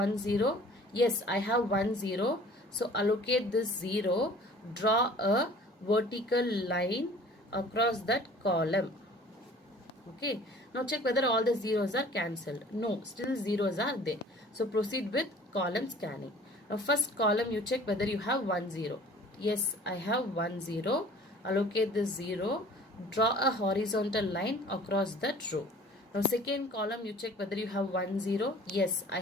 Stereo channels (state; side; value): normal; both; correlation 0.48